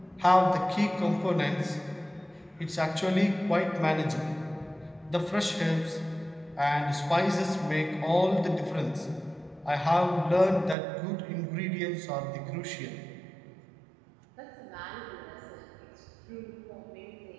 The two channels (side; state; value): left; drops out; at 10.8 s